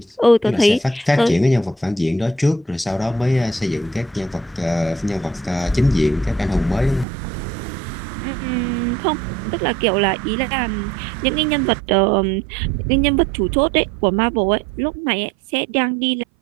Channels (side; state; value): left; drops out; at 7.1 s